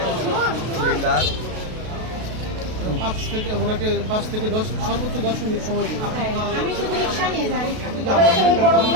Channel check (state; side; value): late; left; 33 ms